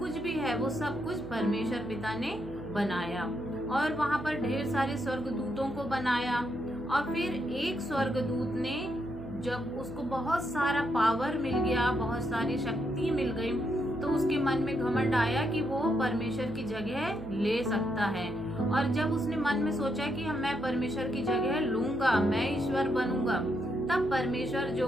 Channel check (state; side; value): noise; right; hum, 15 dB below the sound